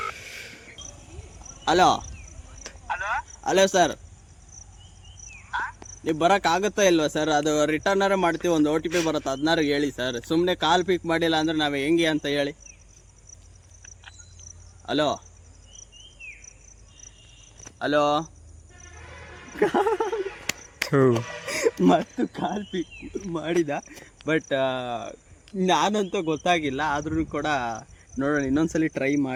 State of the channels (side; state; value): both; identical; correlation 1.00